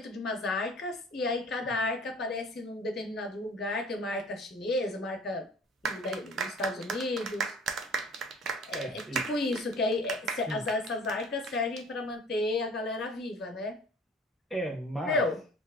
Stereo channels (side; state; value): both; normal; correlation 0.47